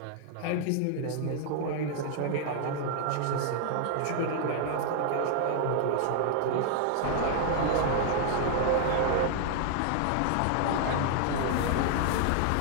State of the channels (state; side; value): different; both; correlation -0.01